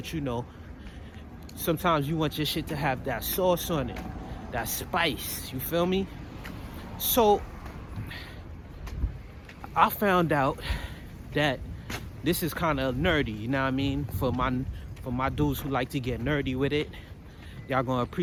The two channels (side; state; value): both; identical; correlation 1.00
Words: you know, sometimes you want your shit to have that sauce on it, that spice, you feel me? So I found out that this is kind of nerdy, you know what I mean? For my dudes who like to get nerdy with it, y'all gonna